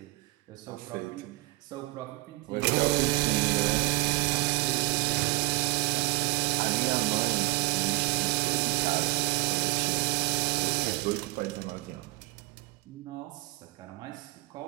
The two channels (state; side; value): quieter; left; 21.8 dB